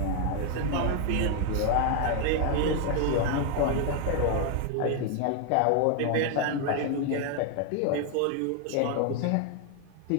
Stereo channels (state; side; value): different; both; correlation 0.01